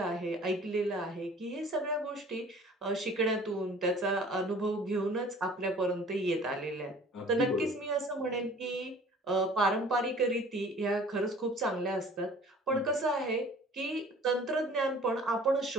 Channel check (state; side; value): normal; both; correlation 0.49